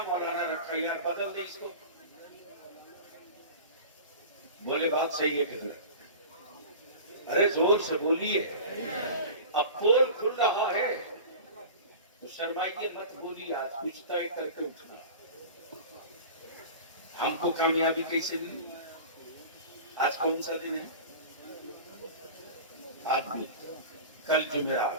मौलाना रखा यार, बदल दे इसको। बोले बात सही है कि अरे जोर से बोलिए, अब पोल खुल रहा है तो शर्माइए मत, बोलिए, आज कुछ तय करके उठना। हमको कामयाबी कैसे मिली? आज कौन सा दिन है? आदमी, कल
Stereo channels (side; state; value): both; inverted; correlation -0.35